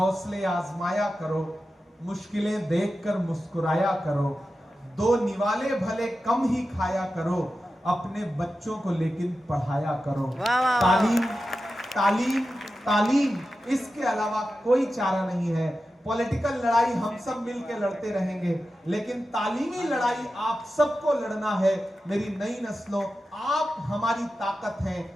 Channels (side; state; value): both; normal; correlation 0.92